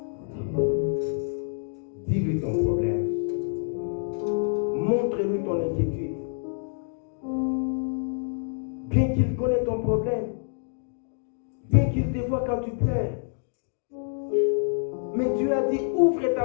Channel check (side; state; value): right; silent; 60 dB below the other